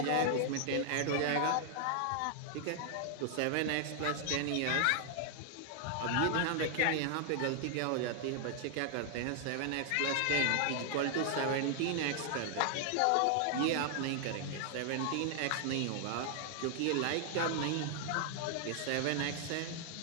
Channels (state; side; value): different; both; correlation 0.00